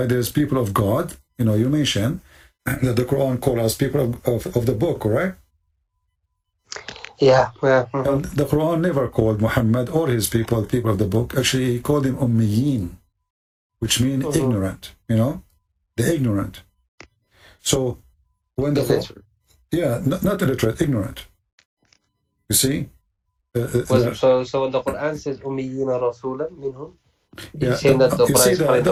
there's people of God. You know, you mentioned that the Quran calls us people of the book, correct? Yeah. And the Quran never called Muhammad or his people of the book. Actually, he called them Ummiyin, which means ignorant, you know, the ignorant. So when the not illiterate, ignorant. You see? So when the Quran says Ummiyina Rasulan minhum, you see,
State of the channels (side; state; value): both; identical; correlation 1.00